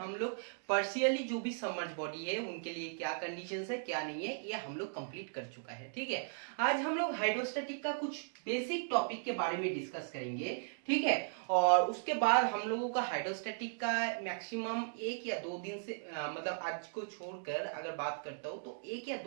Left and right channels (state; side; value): silent; left; digital silence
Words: लोग पार्शियली जो भी सबमर्ज बॉडी है उनके लिए क्या कंडीशंस है क्या नहीं है ये हम लोग कंप्लीट कर चुका है। ठीक है, आज हम लोग हाइड्रोस्टैटिक का कुछ बेसिक टॉपिक के बारे में डिस्कस करेंगे। ठीक है, और उसके बाद हम लोगों का हाइड्रोस्टैटिक का मैक्सिमम 1 या 2 दिन से आज को छोड़कर अगर बात करता हूँ तो 1 या